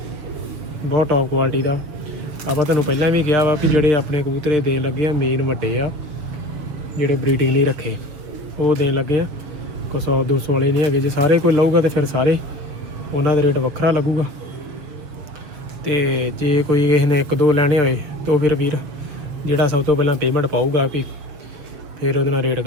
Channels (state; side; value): late; left; 7.2 ms